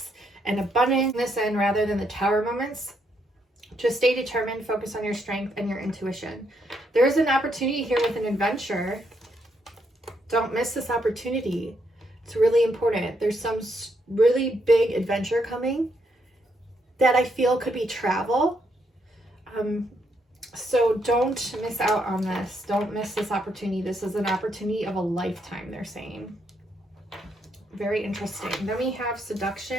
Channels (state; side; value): normal; both; correlation 0.76